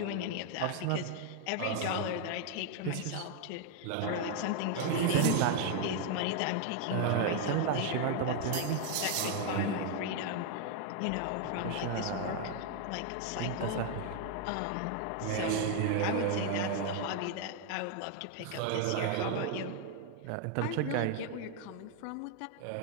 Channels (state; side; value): different; both; correlation 0.00